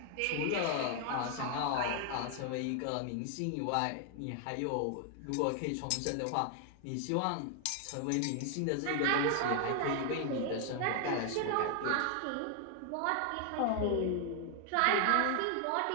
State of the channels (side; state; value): both; different; correlation 0.00